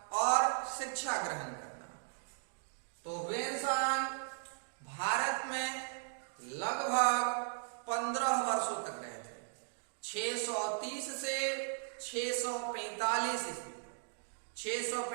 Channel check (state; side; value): silent; left; digital silence